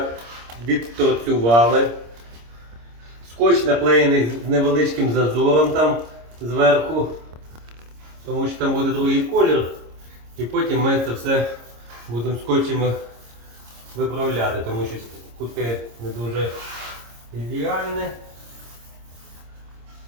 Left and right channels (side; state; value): left; late; 26 ms